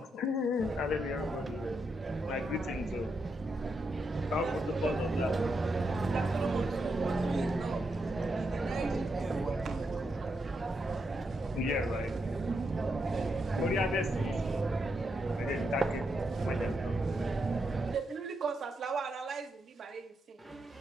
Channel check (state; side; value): normal; both; correlation 0.83